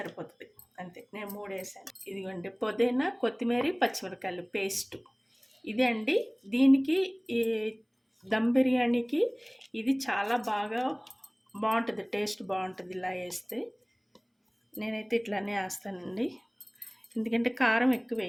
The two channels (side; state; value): both; identical; correlation 1.00